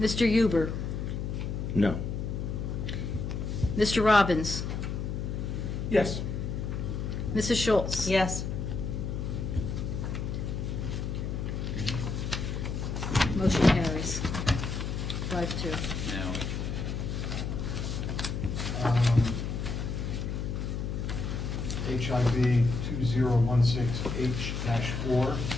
Huber, No. Mr. Robbins, Yes. Mrs. Schultz. Yes. Motion carries. 5-2. Now, HIV 2016H-4.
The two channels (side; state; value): left; noise; hum, 3 dB below the sound